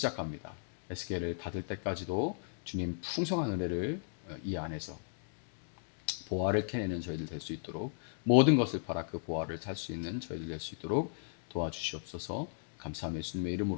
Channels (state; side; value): silent; right; digital silence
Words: 에스겔을 닫을 때까지도 주님 풍성한 은혜를 이 안에서 보화를 캐내는 저희들 될 수 있도록 모든 것을 팔아 그 보화를 살 수 있는 저희들 될 수 있도록 도와주시옵소서. 감사하며 예수님의